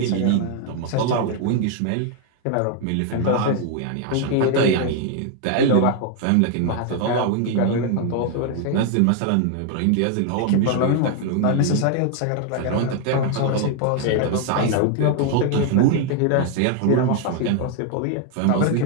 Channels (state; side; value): different; both; correlation 0.00